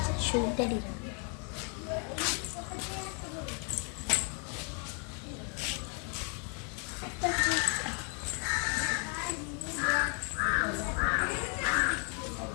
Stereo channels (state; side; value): quieter; right; 39.0 dB